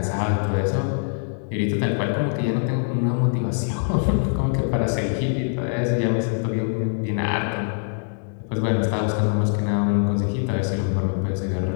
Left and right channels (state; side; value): silent; right; digital silence